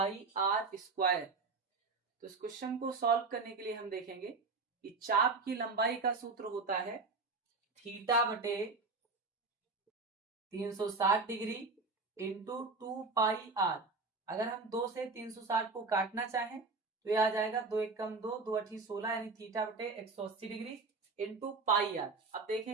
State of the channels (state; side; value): quieter; left; 4.1 dB